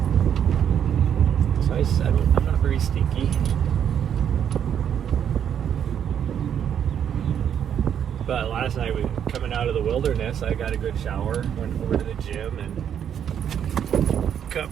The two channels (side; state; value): left; quieter; 8.9 dB